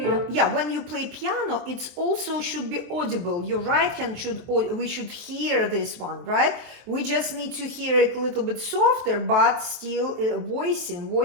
When you play piano, it also should be audible. Your right hand we should hear this one, right? We just need to hear it a little bit softer, but still voice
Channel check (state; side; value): late; left; 23 ms